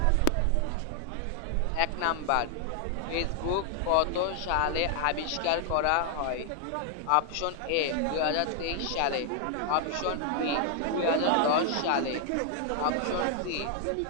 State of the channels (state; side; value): different; both; correlation 0.00